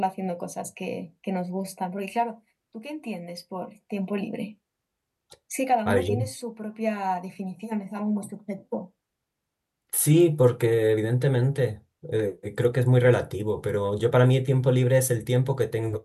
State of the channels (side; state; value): both; identical; correlation 1.00